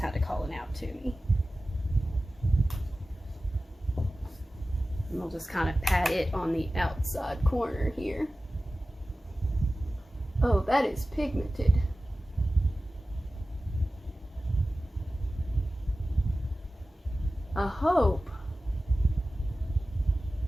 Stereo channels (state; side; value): normal; both; correlation 0.95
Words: of calling out to me. And we'll just kind of pat it on the outside corner here. Oh, that is pigmented. I hope